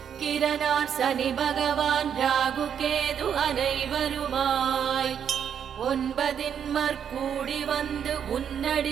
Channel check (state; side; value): quieter; left; 8.3 dB